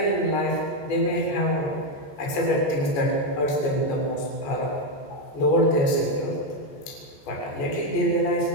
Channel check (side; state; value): right; late; 14 ms